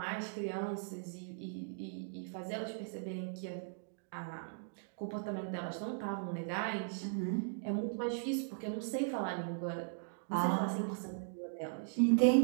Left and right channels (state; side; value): silent; left; digital silence